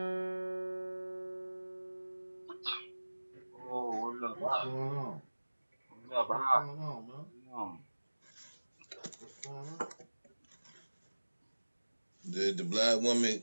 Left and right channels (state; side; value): inverted; both; correlation -1.00